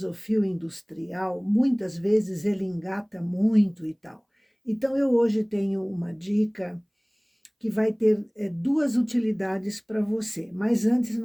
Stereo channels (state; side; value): identical; both; correlation 1.00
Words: o fio industrial, muitas vezes ele engata muito e tal. Então, eu hoje tenho uma dica que vai ter duas utilidades para você. Mas antes